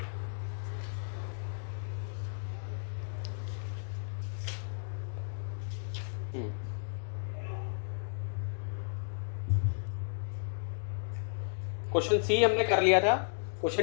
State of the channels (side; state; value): right; silent; digital silence